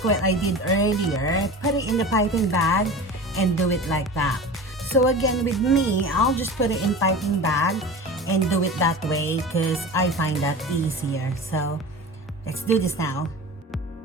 what I did earlier, put it in the piping bag and do it like that. So again, with me, I'll just put it in piping bag and do it that way because I find that easier. So let's do this now.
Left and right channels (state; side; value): normal; both; correlation 0.33